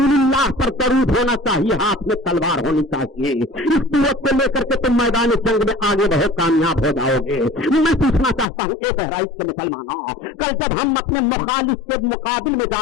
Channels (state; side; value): drops out; right; at 8.5 s